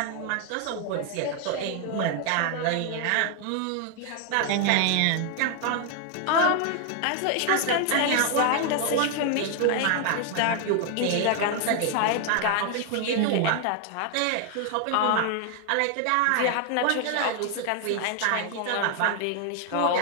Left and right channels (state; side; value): different; both; correlation 0.00